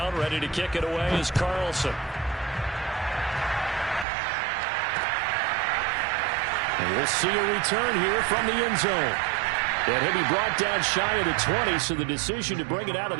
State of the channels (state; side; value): drops out; left; at 4.0 s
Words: ready to kick it away is Carlson. And we'll see a return here from the end zone. And he'll be brought down shy of the 20, so the decision to bring it out of